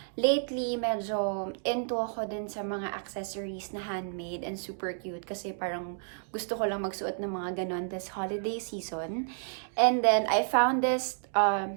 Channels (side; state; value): left; silent; digital silence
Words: lately, medyo into ako din sa mga accessories na handmade and super cute. Kasi parang gusto ko lang magsuot ng mga ganon this holiday season. And then, I found this